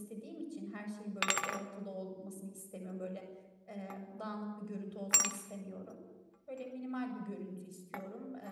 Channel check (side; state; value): both; identical; correlation 1.00